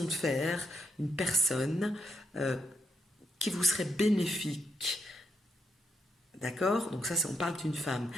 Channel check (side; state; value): both; normal; correlation 0.79